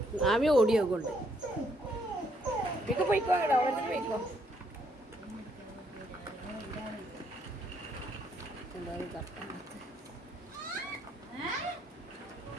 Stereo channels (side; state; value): both; normal; correlation 0.71